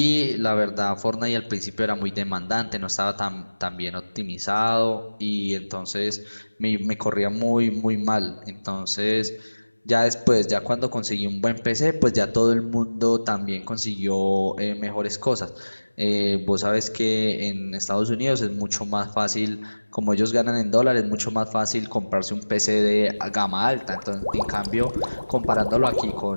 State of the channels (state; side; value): inverted; both; correlation -1.00